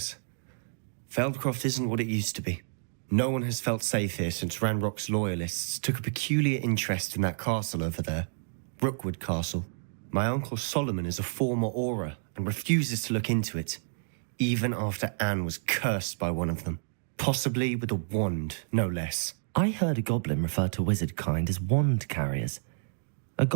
Feldcroft isn't what it used to be. No one has felt safe here since Ranrock's loyalists took a peculiar interest in that castle over there. Rookwood Castle. My uncle Solomon is a former Auror and refuses to look into it, even after Anne was cursed by one of them. Possibly with a wand, no less. I heard a goblin refer to wizard kind as wand carriers. Are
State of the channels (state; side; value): silent; left; digital silence